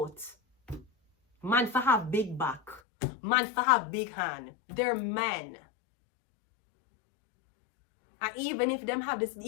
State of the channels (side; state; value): right; drops out; at 2.8 s